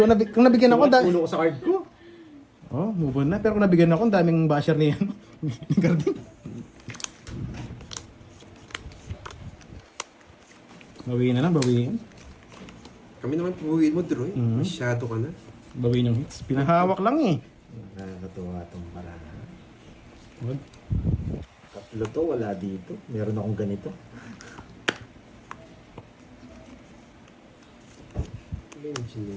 nabigyan ako, Ulo ko sa card ko. oh, move on na. Pero kung nabigyan ako, ang daming basher niyan. Ni Garding. Bawiin na lang, bawiin. Kami naman puhuin mo, Droy. Mhm. Masyado ka na. Bawin yung hits. Pinahawak lang eh. Nakakatuwa itong paraan. Wag. Tatlo to, wala dito. Meron akong ganito.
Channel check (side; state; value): both; identical; correlation 1.00